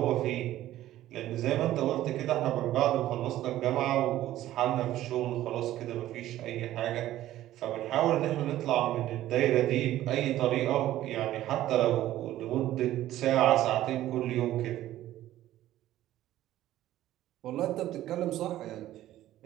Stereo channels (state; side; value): quieter; left; 14.0 dB